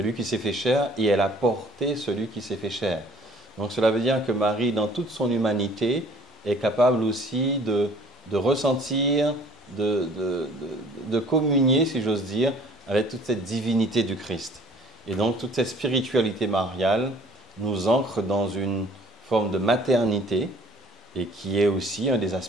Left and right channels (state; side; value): normal; both; correlation 0.53